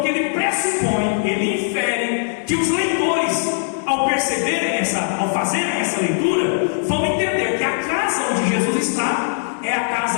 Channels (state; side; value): silent; right; digital silence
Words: ele pressupõe, ele infere que os leitores, ao perceberem ao fazerem essa leitura, vão entender que a casa onde Jesus está é a